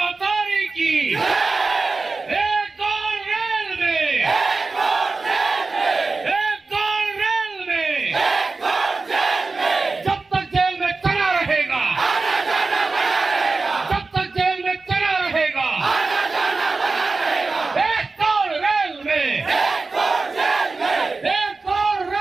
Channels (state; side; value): quieter; left; 3.9 dB